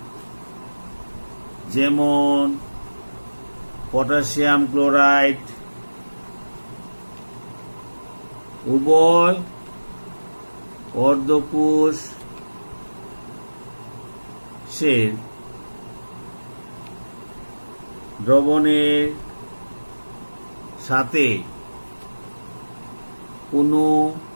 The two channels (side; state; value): both; inverted; correlation -1.00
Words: যেমন পটাশিয়াম ক্লোরাইড, উভয় অর্ধকোষের দ্রবণের সাথে কোনো